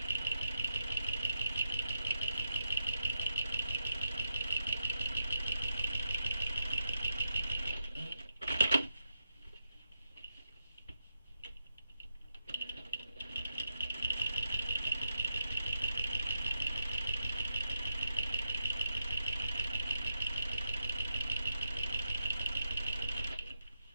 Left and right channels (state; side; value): inverted; both; correlation -0.84